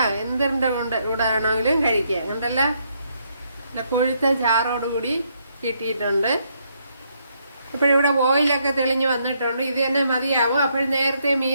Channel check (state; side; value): inverted; both; correlation -0.74